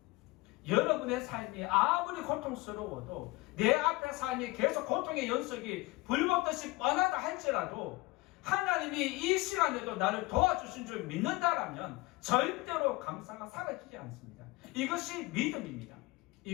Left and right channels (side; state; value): right; quieter; 22.2 dB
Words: 여러분의 삶이 아무리 고통스러워도, 내 앞에 삶이 계속 고통의 연속이 불법듯이 뻔하다 할지라도 하나님이 이 시간에도 나를 도와주신 줄 믿는다라면 절대로 감사가 사라지지 않습니다. 이것이 믿음입니다.